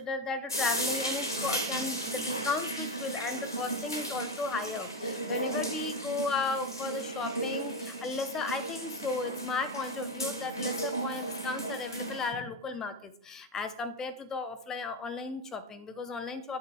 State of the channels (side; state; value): both; normal; correlation 0.14